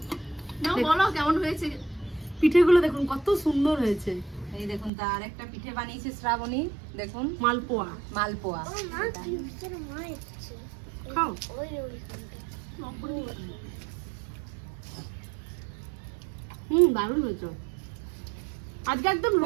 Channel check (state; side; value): drops out; left; at 4.9 s